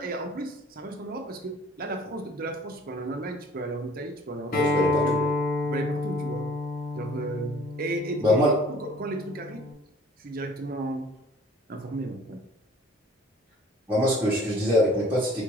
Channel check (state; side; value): normal; both; correlation 0.52